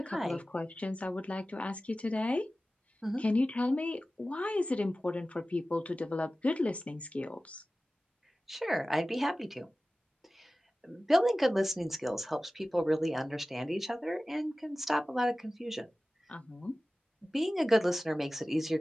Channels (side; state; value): both; normal; correlation 0.96